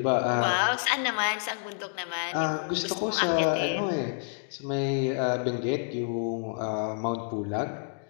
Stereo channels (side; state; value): right; silent; digital silence